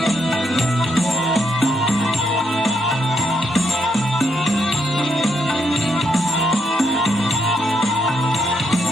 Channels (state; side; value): normal; both; correlation 0.78